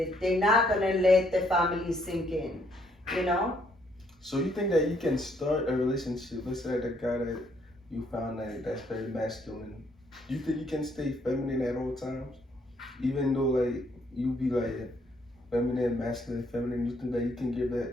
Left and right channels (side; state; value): both; normal; correlation 0.69